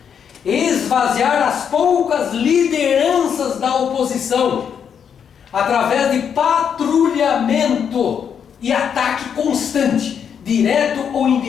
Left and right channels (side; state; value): right; quieter; 7.7 dB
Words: Esvaziar as poucas lideranças da oposição através de patrulhamento e ataque constante, direto ou